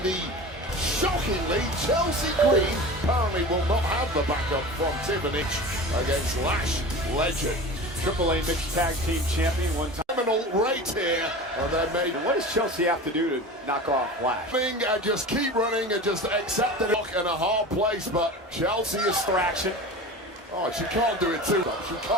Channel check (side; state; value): both; normal; correlation 0.33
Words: the shockingly Chelsea Green apparently will not have the backup from Tiffany against Lash legend. AAA mixed tag team champion one time. Criminal right here, and they made. What does Chelsea have to do to knock off Lash? And just keep running and just accept it in a hard place, but Chelsea is distraction. Oh, she can't do it 2 times. She